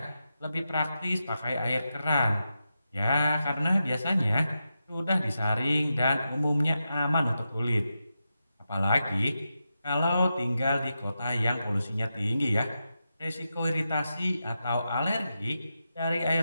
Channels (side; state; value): both; inverted; correlation -0.88